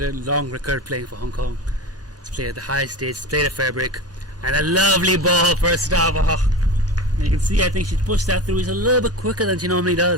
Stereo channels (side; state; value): both; normal; correlation 0.28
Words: long record playing for Hong Kong. He's played at the high stage, played at Fairbrick, and a lovely ball first off. And you can see, I think she's pushed that through. He's a little bit quicker than she normally